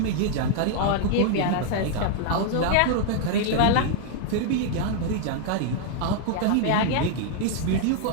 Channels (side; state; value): both; different; correlation 0.00